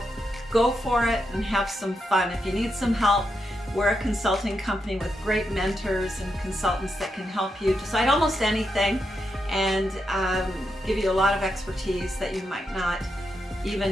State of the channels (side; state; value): both; normal; correlation 0.84